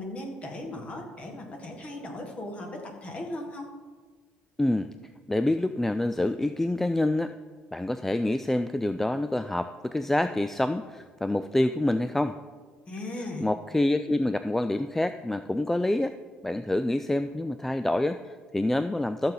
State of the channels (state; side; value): normal; both; correlation 0.96